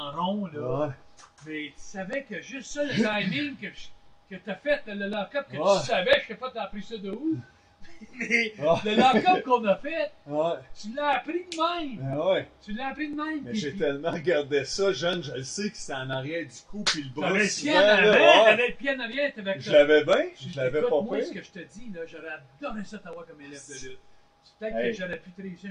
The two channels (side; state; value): both; identical; correlation 1.00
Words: rond, là, Ouais. mais tu savais que juste ça, le timing que t'as fait, le lock-up, que Ouais. tu savais, je sais pas, t'as appris ça de où? Mais Ah. le lock-up qu'on a fait, Ouais, tu l'as appris de même. ben ouais. Tu l'as appris de même. Mais puis- j'ai tellement regardé ça, jeune, je le sais que c'était en arrière du cou, puis le bras T'avais le souvent, pied en là, avant, ouais. t'avais le pied en arrière, t'avais Je l'avais bien, Je- je l'avais écoute, pas moi, ce pire. que je te dis, là, j'aurais adoré ça t'avoir comme élève de lutte. Peut-être Hey. que j'aurais pu te réussir